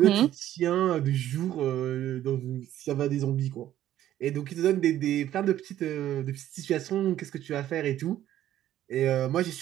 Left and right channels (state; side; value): quieter; left; 12.5 dB